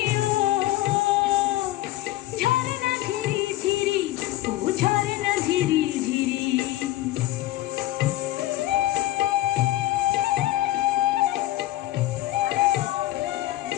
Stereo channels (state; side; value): quieter; right; 15.6 dB